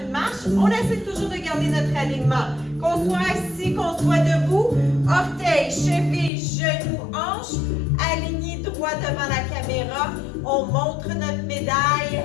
une marche. On essaie toujours de garder notre alignement. Qu'on soit assis, qu'on soit debout, orteils, chevilles, genoux, hanches, alignés droit devant la caméra. On montre notre médaille,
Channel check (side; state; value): right; drops out; at 6.3 s